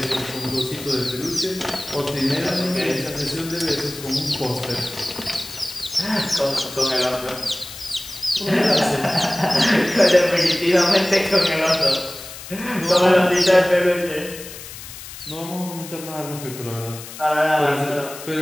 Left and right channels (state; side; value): noise; left; hiss, 13 dB below the sound